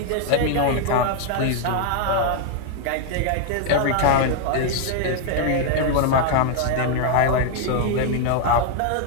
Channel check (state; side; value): different; both; correlation 0.00